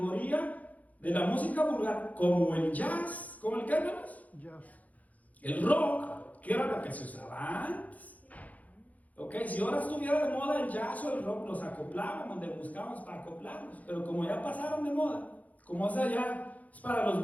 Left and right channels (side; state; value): right; late; 0.074 ms